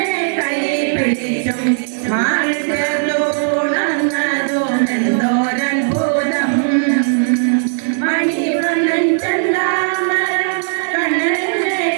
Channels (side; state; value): left; silent; 68 dB below the other